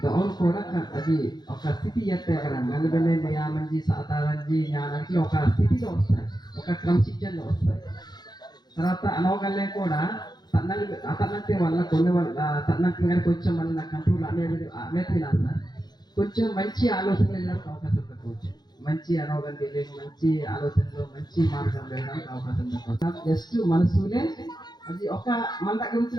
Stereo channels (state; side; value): late; right; 0.20 ms